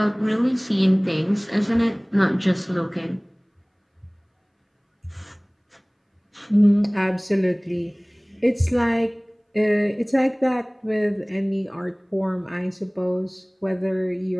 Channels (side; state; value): both; identical; correlation 1.00